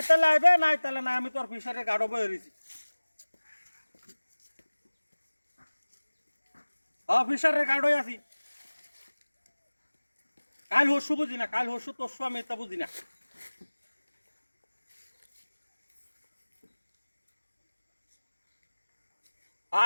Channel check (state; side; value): inverted; both; correlation -1.00